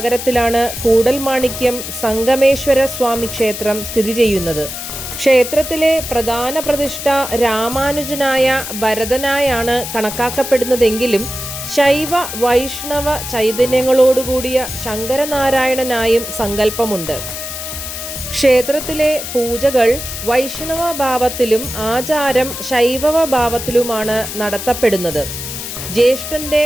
കൂടൽമാണിക്യം സംഗമേശ്വര സ്വാമി ക്ഷേത്രം സ്ഥിതി ചെയ്യുന്നത്. ക്ഷേത്രത്തിലെ പ്രധാന പ്രതിഷ്ഠ രാമാനുജനായ ഭരതനായാണ് കണക്കാക്കപ്പെടുന്നതെങ്കിലും ശൈവ വൈഷ്ണവ ചൈതന്യങ്ങളോടുകൂടിയ ശങ്കരനാരായണനായും സങ്കല്പമുണ്ട്. ക്ഷേത്രത്തിലെ പൂജകൾ വൈഷ്ണവ ഭാവത്തിലും ആചാരം ശൈവവ ഭാവത്തിലുമാണ് നടത്തപ്പെടുന്നത്. ജ്യേഷ്ഠന്റെ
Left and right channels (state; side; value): noise; left; hiss, 7 dB below the sound